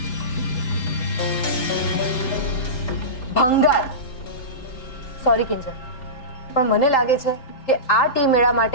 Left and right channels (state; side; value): late; right; 3.8 ms